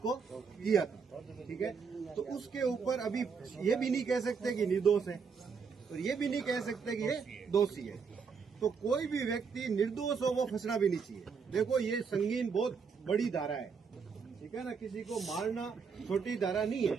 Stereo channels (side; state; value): left; quieter; 5.7 dB